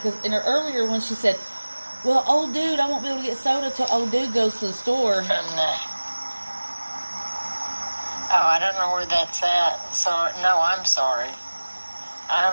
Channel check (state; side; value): inverted; both; correlation -1.00